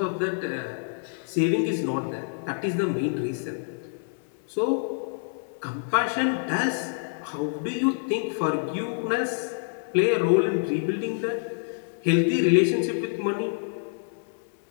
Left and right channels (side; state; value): right; silent; 57 dB below the other